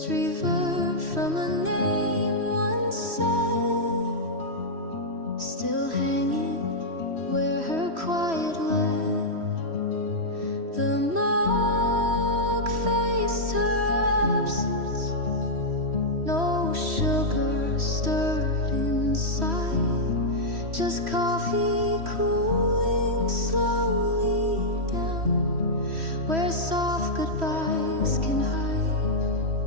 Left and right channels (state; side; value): late; left; 3.1 ms